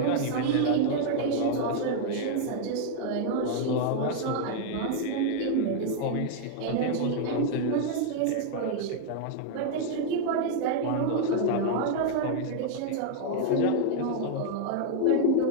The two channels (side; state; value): both; different; correlation 0.00